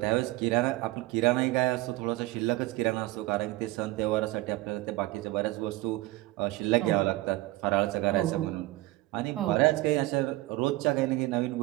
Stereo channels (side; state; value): left; quieter; 18.9 dB